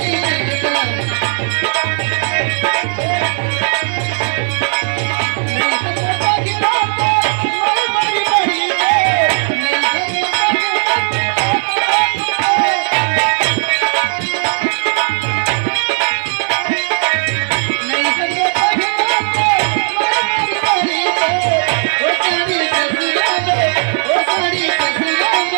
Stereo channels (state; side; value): silent; left; digital silence